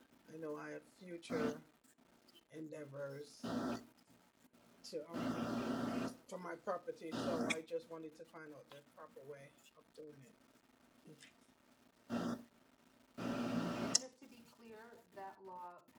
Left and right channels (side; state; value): both; identical; correlation 1.00